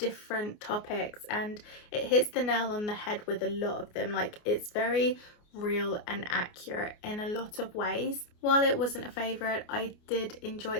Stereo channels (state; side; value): late; right; 29 ms